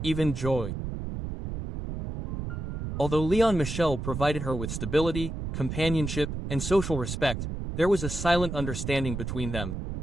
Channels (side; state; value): right; noise; rumble, 5 dB below the sound